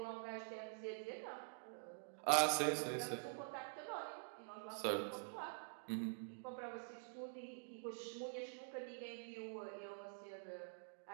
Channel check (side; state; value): left; silent; digital silence